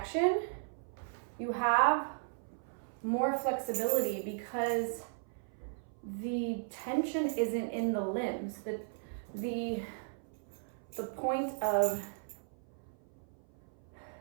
you have more flexibility because the tension isn't in the limbs. The point of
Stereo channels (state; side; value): silent; left; 54 dB below the other